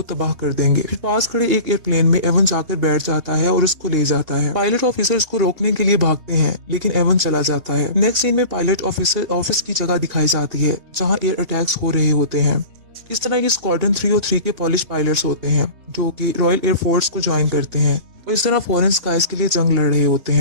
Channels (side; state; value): left; late; 3.2 ms